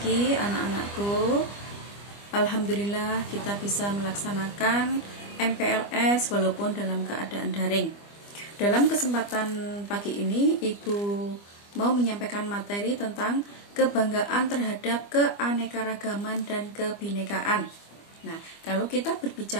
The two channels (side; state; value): right; late; 25 ms